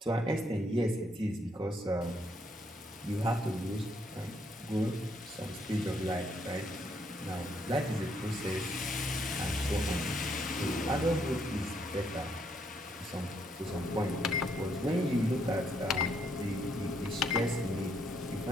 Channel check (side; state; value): both; normal; correlation 0.73